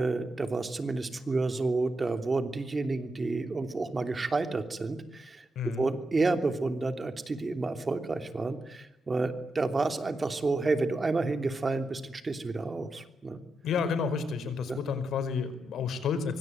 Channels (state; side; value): normal; both; correlation 0.85